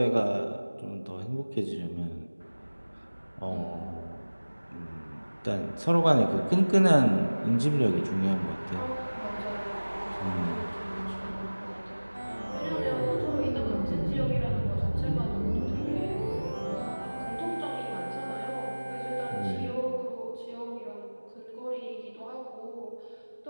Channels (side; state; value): both; inverted; correlation -1.00